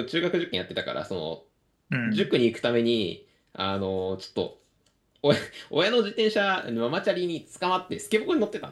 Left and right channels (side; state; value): both; identical; correlation 1.00